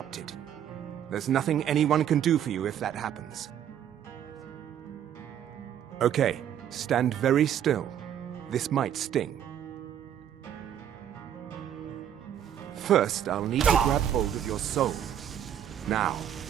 There's nothing anyone can do for you if that happens. Okay, stand very still. This might sting. First, I'll need to grab hold of your soul. Now,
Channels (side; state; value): left; quieter; 9.9 dB